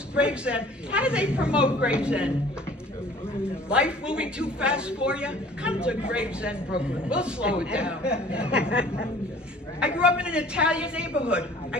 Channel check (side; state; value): both; normal; correlation 0.50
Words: Gravesend. How do they promote Gravesend? Life moving too fast for you? Come to Gravesend, Brooklyn. We'll slow it down. I grew up in an Italian neighborhood. I